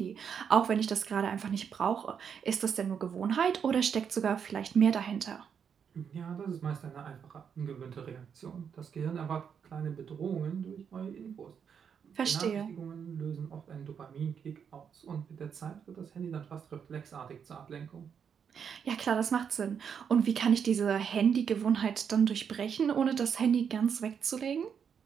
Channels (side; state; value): left; quieter; 7.3 dB